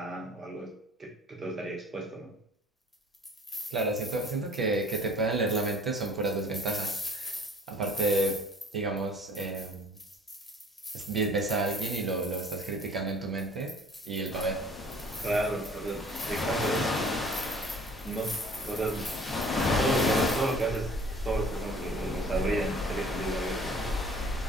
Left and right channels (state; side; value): normal; both; correlation 0.50